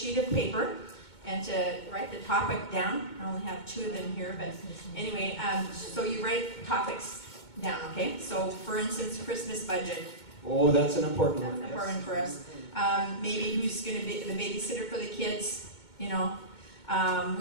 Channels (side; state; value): right; late; 2.2 ms